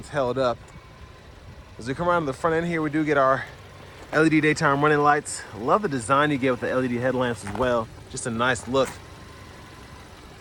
held up. As we come around to the front end here, we do get our LED daytime running lights. I love the design you get with the LED headlamps as well. Just a nice look.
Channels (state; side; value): identical; both; correlation 1.00